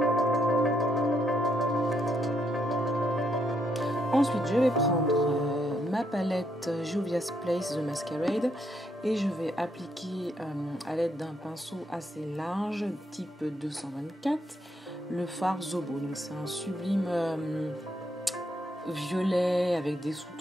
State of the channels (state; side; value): normal; both; correlation 0.75